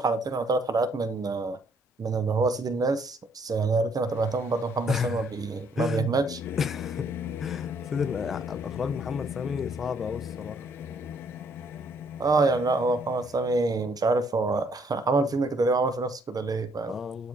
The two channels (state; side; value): normal; both; correlation 0.66